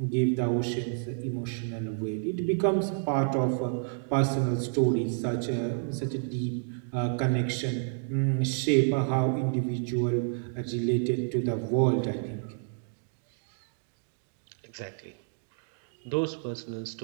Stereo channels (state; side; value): silent; left; digital silence